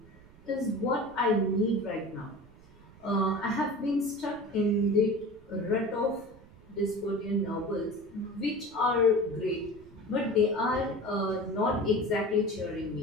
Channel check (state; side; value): noise; right; rumble, 24 dB below the sound